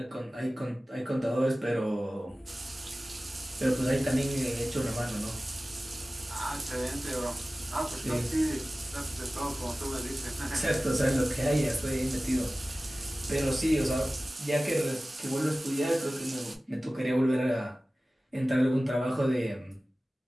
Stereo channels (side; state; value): both; normal; correlation 0.97